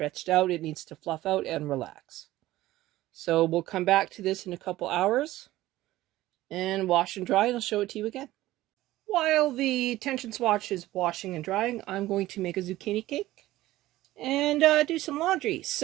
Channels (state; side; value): quieter; left; 16.2 dB